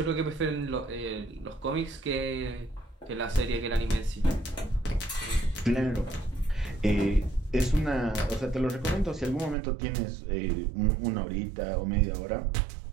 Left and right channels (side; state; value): left; drops out; at 9.6 s